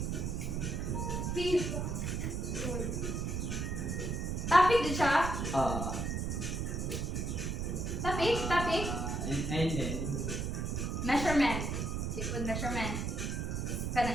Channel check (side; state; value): right; noise; rumble, 1 dB below the sound